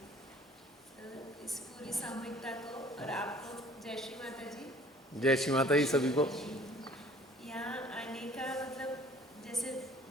इस पूरी सामूहिकता को और आपको जय श्री माता जी। जय श्री माता जी सभी को। यहाँ आने का मतलब, जैसे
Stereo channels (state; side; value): normal; both; correlation 0.53